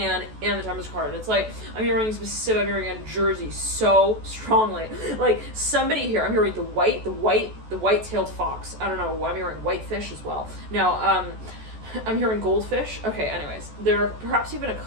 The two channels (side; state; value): left; late; 14 ms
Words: and the Temperance card. And it's like, I'm hearing in Jersey so strongly. Like somebody here, I'm hearing the white-tailed fox. I don't know, I'm hearing whitefish as well. Now, I'm hearing goldfish. Okay, anyways, they're perhaps even a